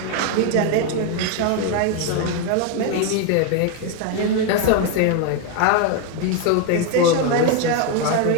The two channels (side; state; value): both; different; correlation 0.01